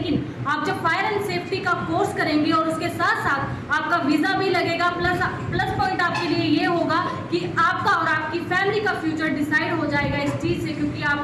आप जब फायर एंड सेफ्टी का कोर्स करेंगे और उसके साथ साथ आपका वीज़ा भी लगेगा, प्लस पॉइंट आपके लिए ये होगा कि आपका और आपकी फैमिली का फ्यूचर डिसाइड हो जाएगा इस चीज़ से, क्योंकि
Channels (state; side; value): identical; both; correlation 1.00